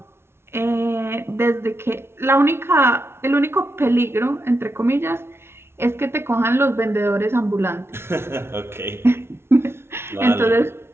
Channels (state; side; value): late; left; 0.12 ms